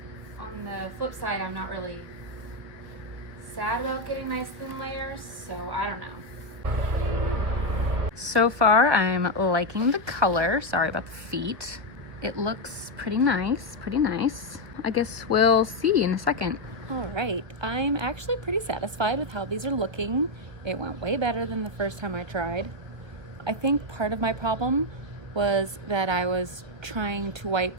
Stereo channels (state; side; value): late; left; 1.4 ms